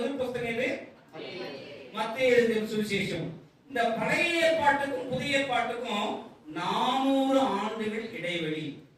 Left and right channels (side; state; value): both; identical; correlation 1.00